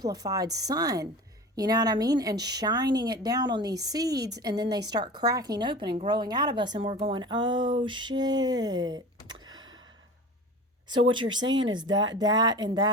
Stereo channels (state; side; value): normal; both; correlation 0.35